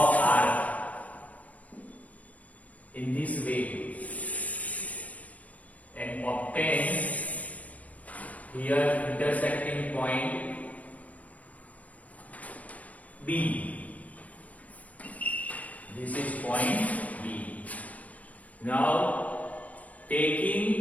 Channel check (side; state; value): right; late; 0.071 ms